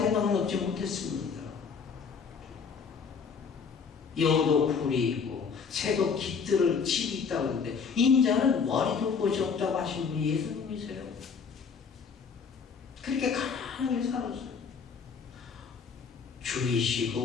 넉넉지 못했습니다. 여우도 굴이 있고 새도 깃들을 집이 있다고 하는데 인자는 머리도 곳이 없다고 하신 분이 예수님이세요. 그렇게 가난하게 살았어요.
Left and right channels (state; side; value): quieter; right; 5.8 dB